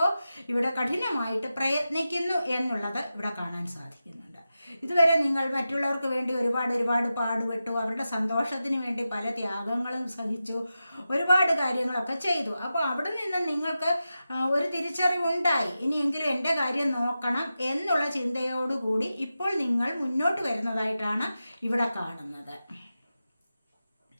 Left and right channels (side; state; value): both; inverted; correlation -0.92